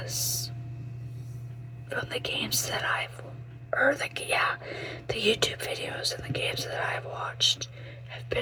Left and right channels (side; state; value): both; identical; correlation 1.00